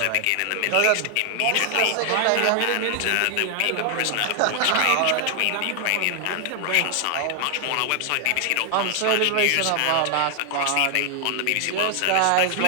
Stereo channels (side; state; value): both; different; correlation 0.00